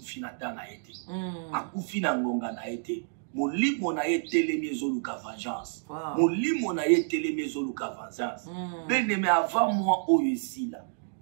dana ete. Akufi na ngonga na ete. Molimo na ye telemi ezoluka vengeance. Molimo na ye telemi ezoluka vengeance. Beneme avant moi oyo esila.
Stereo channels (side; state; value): left; silent; digital silence